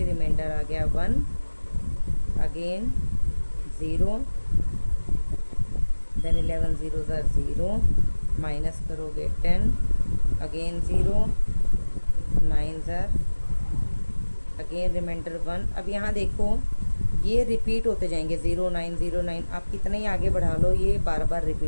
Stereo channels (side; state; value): both; inverted; correlation -1.00